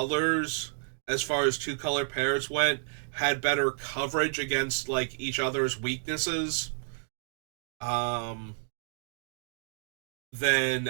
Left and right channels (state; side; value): silent; left; digital silence